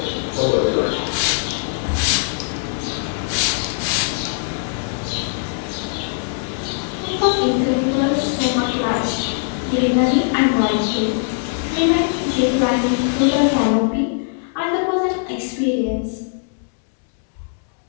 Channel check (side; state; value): right; silent; digital silence